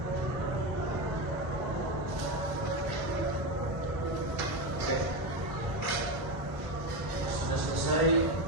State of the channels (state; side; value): late; left; 1.0 ms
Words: Oke, sudah selesai.